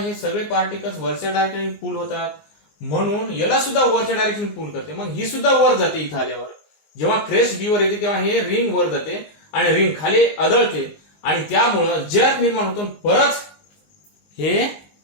सगळे पार्टिकल्स वरच्या डायरेक्शनने पुल होतात, म्हणून याला सुद्धा वरच्या डायरेक्शन पुल करते. मग ही सुद्धा वर जाते. इथं आल्यावर जेव्हा क्रेस्ट बी वर येते तेव्हा हे रिंग वर जाते आणि रिंग खाली आदळते आणि त्यामुळं जर्क निर्माण होतो. परत हे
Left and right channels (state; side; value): late; right; 19 ms